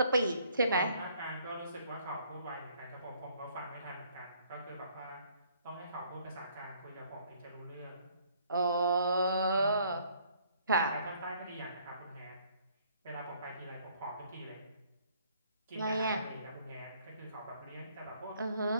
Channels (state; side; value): inverted; both; correlation -0.62